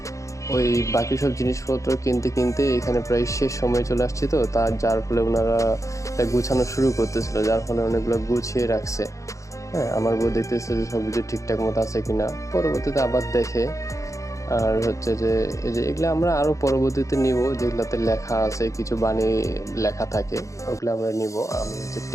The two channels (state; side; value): late; right; 0.15 ms